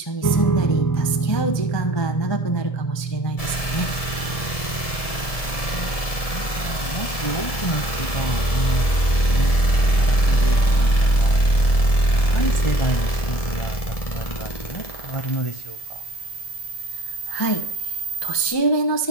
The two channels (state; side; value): late; right; 1.7 ms